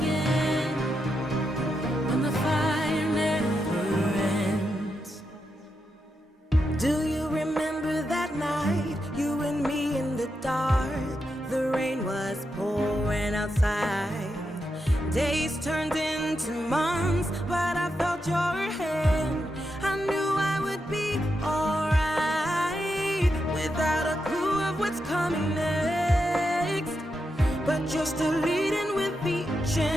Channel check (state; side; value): normal; both; correlation 0.85